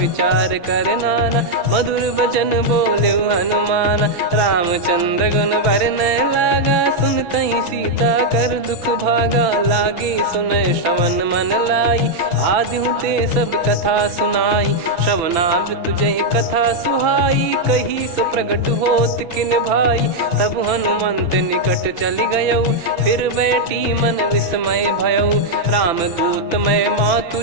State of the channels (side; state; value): left; late; 6.0 ms